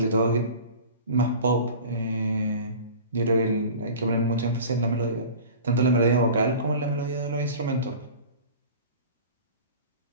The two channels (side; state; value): both; inverted; correlation -0.39